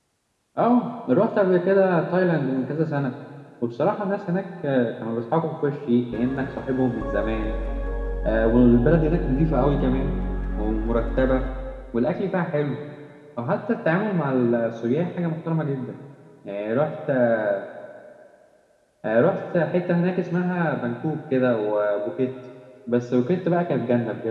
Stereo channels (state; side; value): identical; both; correlation 1.00